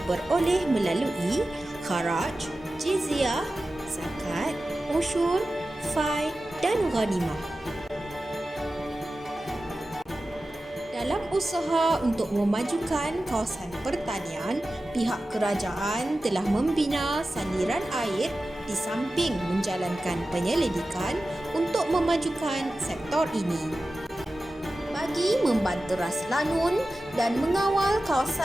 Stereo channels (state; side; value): normal; both; correlation 0.94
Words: melalui kharaj, jizyah, zakat, usyur, fai dan ghanimah. Dalam usaha untuk memajukan kawasan pertanian, pihak kerajaan telah membina saliran air di samping menjalankan penyelidikan untuk memajukan sektor ini. Bagi membanteras lanun dan mengawal